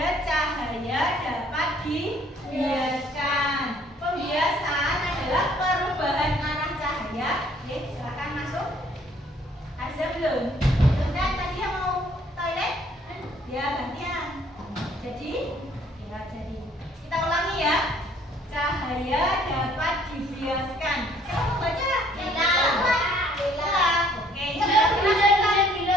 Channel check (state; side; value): normal; both; correlation 0.61